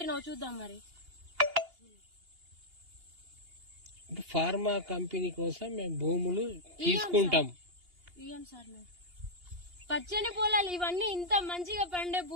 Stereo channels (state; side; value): late; left; 2.8 ms